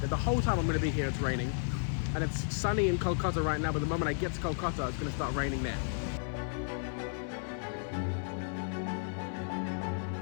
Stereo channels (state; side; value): silent; right; 56 dB below the other